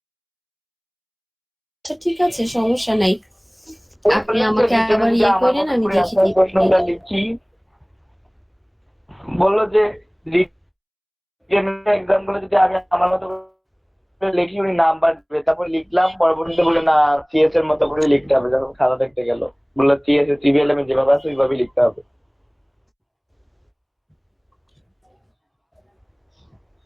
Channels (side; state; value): both; identical; correlation 1.00